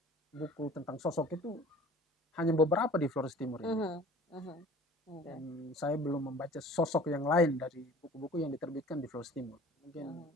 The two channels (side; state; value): both; normal; correlation 0.47